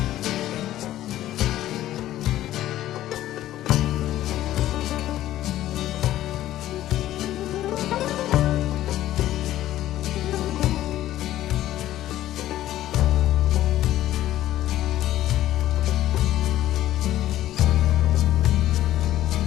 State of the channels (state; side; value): quieter; right; 13.8 dB